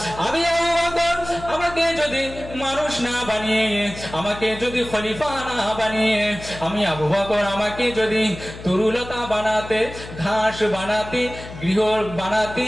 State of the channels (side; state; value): left; noise; hum, 13 dB below the sound